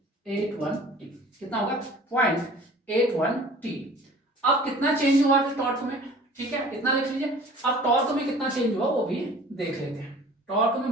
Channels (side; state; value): both; normal; correlation 0.47